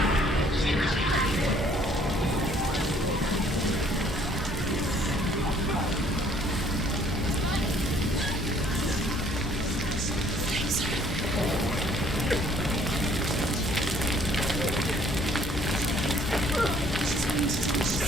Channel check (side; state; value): both; normal; correlation 0.60